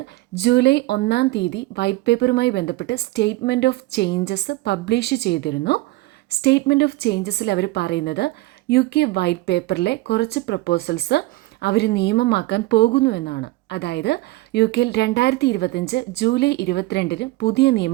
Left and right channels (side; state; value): left; quieter; 19.2 dB